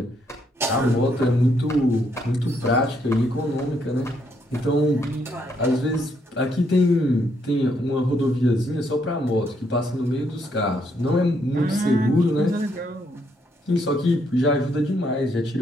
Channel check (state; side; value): normal; both; correlation 0.73